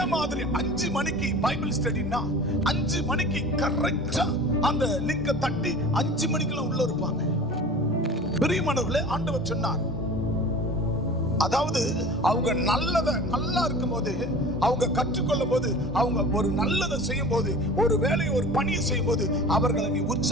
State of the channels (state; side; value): normal; both; correlation 0.39